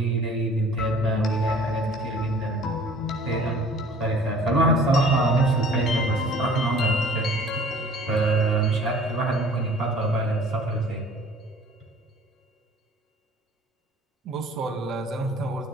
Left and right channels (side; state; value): both; normal; correlation 0.50